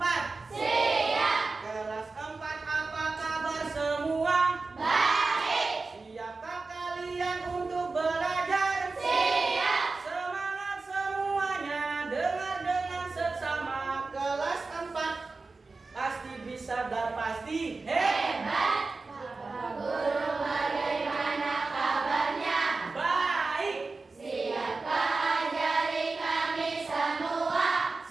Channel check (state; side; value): quieter; left; 3.8 dB